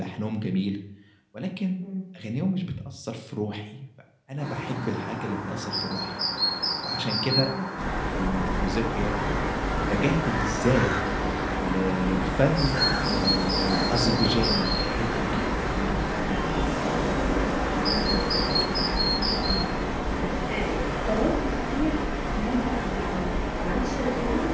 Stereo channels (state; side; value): identical; both; correlation 1.00